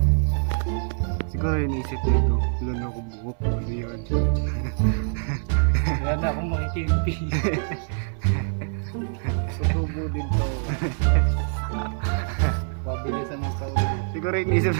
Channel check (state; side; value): silent; left; 62 dB below the other